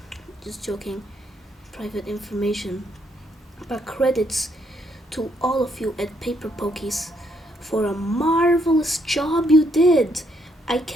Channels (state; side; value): normal; both; correlation 0.72